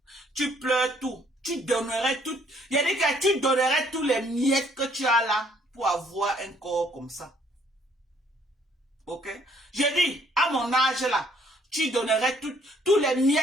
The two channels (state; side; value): normal; both; correlation 0.63